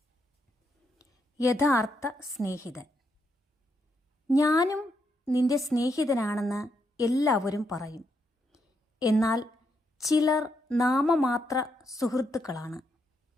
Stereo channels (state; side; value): normal; both; correlation 0.79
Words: യഥാർത്ഥ സ്നേഹിതൻ. ഞാനും നിന്റെ സ്നേഹിതനാണെന്ന് എല്ലാവരും പറയും, എന്നാൽ ചിലർ നാമമാത്ര സുഹൃത്തുക്കളാണ്.